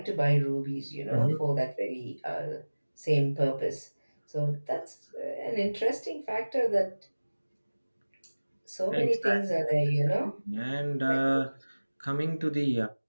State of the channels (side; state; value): both; inverted; correlation -1.00